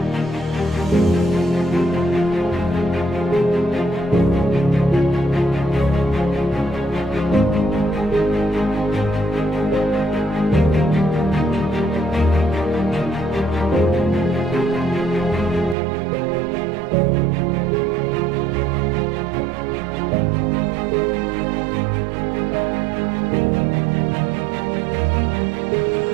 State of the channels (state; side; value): drops out; left; at 15.8 s